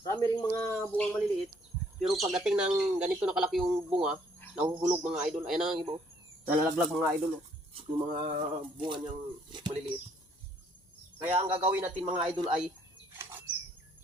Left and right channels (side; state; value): both; normal; correlation 0.65